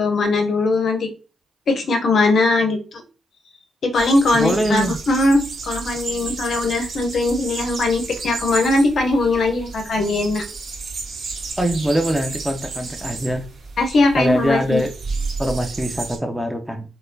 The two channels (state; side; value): normal; both; correlation 0.82